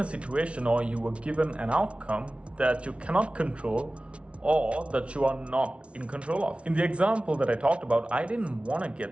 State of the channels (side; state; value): left; late; 0.061 ms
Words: situation or you were given an outcome that you cannot control or that you are not in control of. In the example that I talked about, I didn't want to